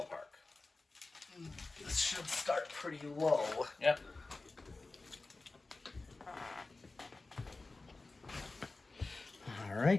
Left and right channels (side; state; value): right; quieter; 3.4 dB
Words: This should start pretty low. Yep. All